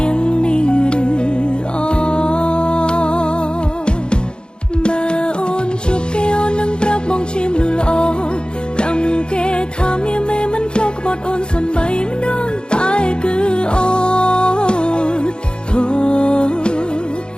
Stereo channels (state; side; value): late; right; 0.050 ms